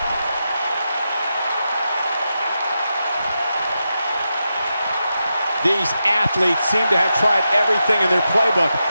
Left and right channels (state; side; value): inverted; both; correlation -0.88